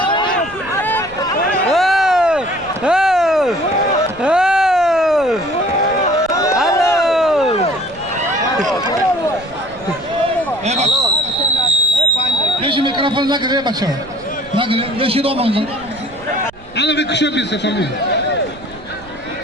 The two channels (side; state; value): right; noise; rumble, 22 dB below the sound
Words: Beşi mikrofon ne kadar bakşa? Ne kadar? Beşi doğmanızın. Ana bir kuşa bir sefer mi?